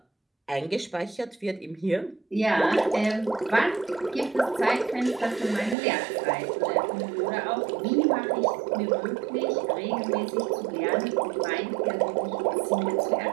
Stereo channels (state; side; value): drops out; left; at 5.8 s